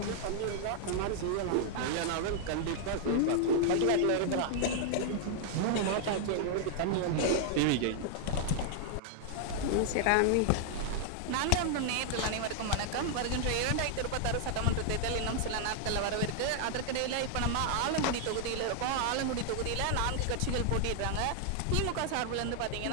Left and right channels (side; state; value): both; different; correlation 0.00